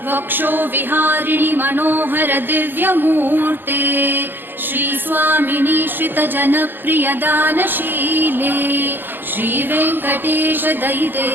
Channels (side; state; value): left; late; 0.096 ms